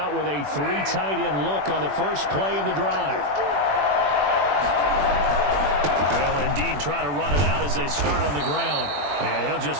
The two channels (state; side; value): late; left; 21 ms